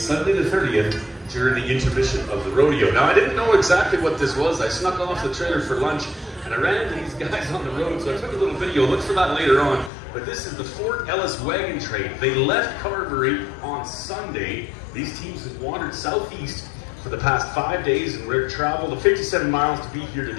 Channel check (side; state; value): right; drops out; at 9.9 s